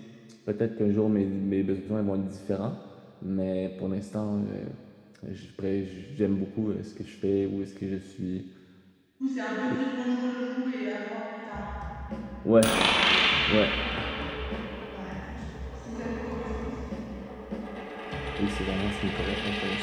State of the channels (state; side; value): identical; both; correlation 1.00